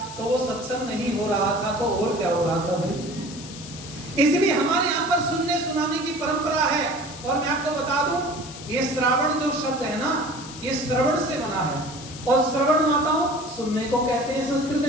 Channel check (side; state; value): left; noise; hiss, 14 dB below the sound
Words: तो वो सत्संग नहीं हो रहा था, तो और क्या हो रहा था भाई? इसलिए हमारे यहाँ पर सुनने सुनाने की परंपरा है। और मैं आपको बता दूं, ये श्रावण जो शब्द है ना, ये श्रवण से बना है, और श्रवण माताओं सुनने को कहते हैं संस्कृत